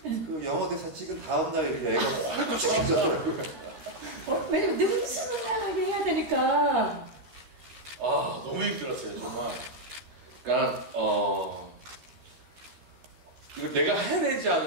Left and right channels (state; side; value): late; left; 13 ms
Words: 그 영어 대사 찍은 다음 날 이렇게 애가 홀쭉해졌더라고요. 왜냐면 능수능란하게 해야 되니까. 너무 힘들었어요, 정말. 그러니까 이거 내가 해내지